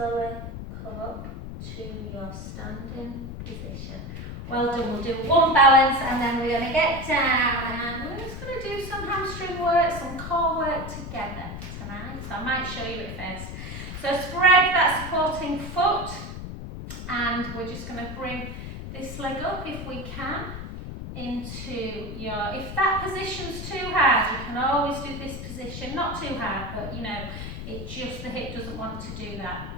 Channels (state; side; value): noise; left; rumble, 8 dB below the sound